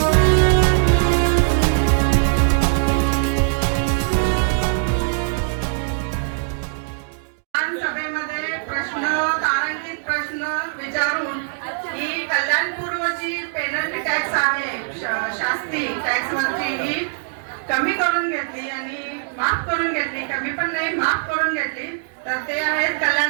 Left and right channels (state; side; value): silent; left; digital silence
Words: सभेमध्ये प्रश्न तारांकित प्रश्न विचारून ही कल्याणपूर्वची पेनल्टी टॅक्स आहे, शास्ती टॅक्स वरची ही कमी करून घेतली आणि माफ करून घेतली, कमी पण नाही माफ करून घेतली. तर ते आहेत